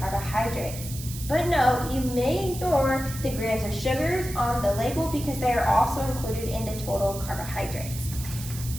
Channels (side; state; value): right; noise; hiss, 11 dB below the sound